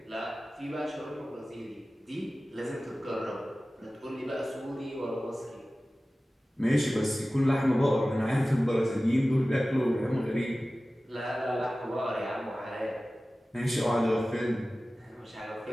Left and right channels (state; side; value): normal; both; correlation 0.96